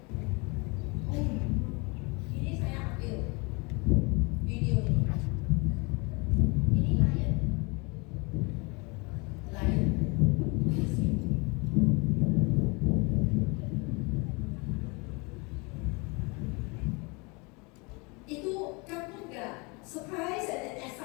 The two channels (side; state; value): right; quieter; 29.0 dB